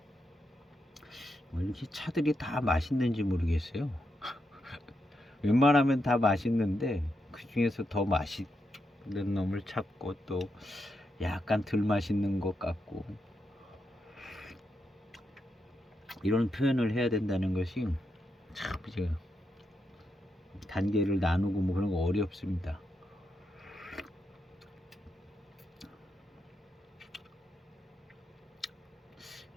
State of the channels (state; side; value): normal; both; correlation 0.83